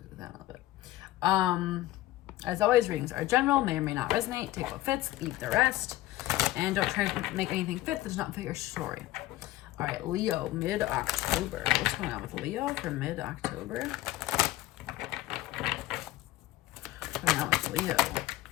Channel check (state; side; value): quieter; right; 16.2 dB